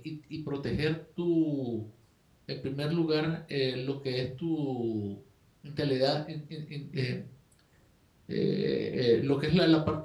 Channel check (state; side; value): identical; both; correlation 1.00